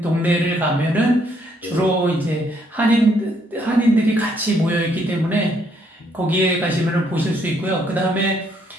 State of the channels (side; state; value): both; normal; correlation 0.70